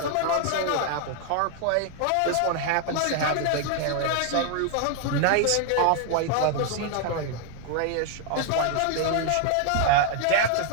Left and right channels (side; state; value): both; different; correlation 0.00